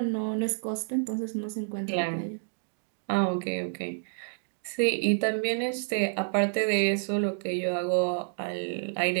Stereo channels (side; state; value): left; silent; digital silence